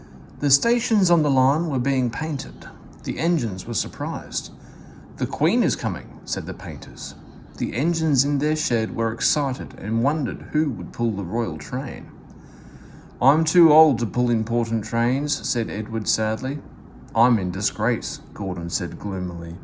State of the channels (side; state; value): both; identical; correlation 1.00